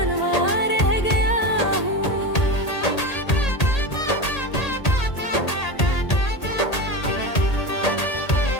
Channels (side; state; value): right; late; 1.8 ms